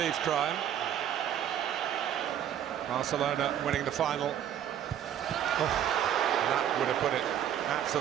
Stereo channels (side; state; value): left; quieter; 10.2 dB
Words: crime. Barcelona winning the final. That would have put it